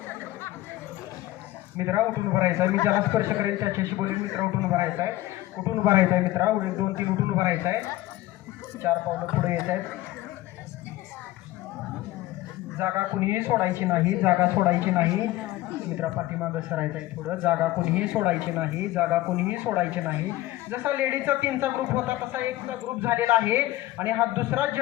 मित्रा. उठून उभं राहायचं आहे. मी ज्याला स्पर्श करेन त्याच्याशी बोलेन मित्रा. उठून उभं राहायचं आहे, उठून उभं राहायचं आहे मित्रा. 2-3 उठून उभं राहायचं आहे. 4 पावलं पुढे येत आहेत. जागा कुणीही सोडायची नाही, जागा सोडायची नाही मित्रा. पाठीमागं सरायचं आहे थोडं. जागा कुणीही सोडायची नाही, जागा कुणीही सोडायची नाही. जसा लेडीजचा 3चा ग्रुप होता तसा 1चा ग्रुप झालेला आहे आणि हा दुसरा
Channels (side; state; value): right; quieter; 16.6 dB